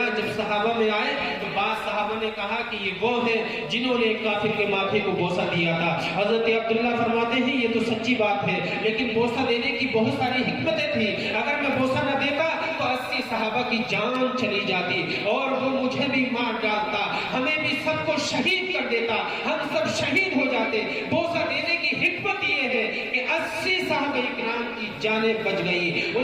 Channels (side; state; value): both; identical; correlation 1.00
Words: جب صحابہ میں آئے تو بعض صحابہ نے کہا کہ یہ وہ ہیں جنہوں نے ایک کافر کے ماتھے کو بوسہ دیا تھا۔ حضرت عبداللہ فرماتے ہیں یہ تو سچی بات ہے، لیکن بوسہ دینے کی بہت ساری حکمتیں تھیں، اگر میں بوسہ نہ دیتا تو 80 صحابہ کی جان چلی جاتی اور وہ مجھے بھی مار ڈالتا، ہمیں بھی سب کو شہید کر دیتا، ہم سب شہید ہو جاتے۔ بوسہ دینے کی حکمت یہ ہے کہ 80 صحابہ اکرام کی جانیں بچ گئی،